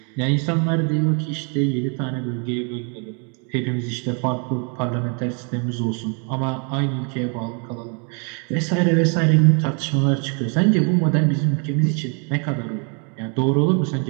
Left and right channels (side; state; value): left; quieter; 37.8 dB